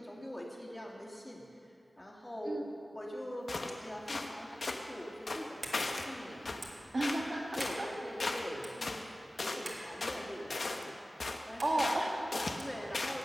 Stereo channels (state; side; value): normal; both; correlation 0.96